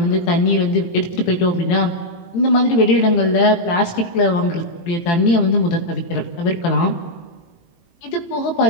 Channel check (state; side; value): late; right; 18 ms